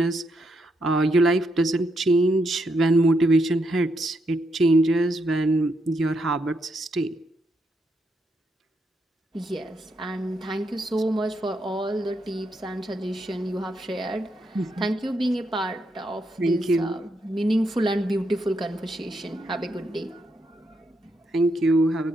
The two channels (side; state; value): both; normal; correlation 0.79